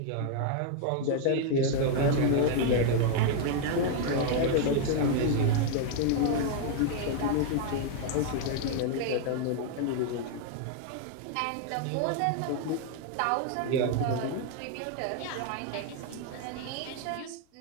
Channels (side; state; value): both; different; correlation 0.00